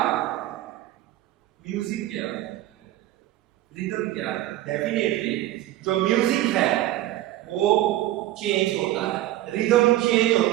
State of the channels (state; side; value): quieter; left; 14.9 dB